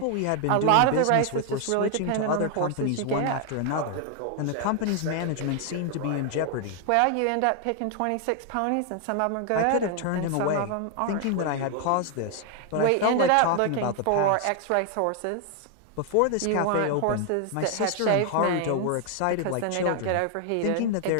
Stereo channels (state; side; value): different; both; correlation 0.00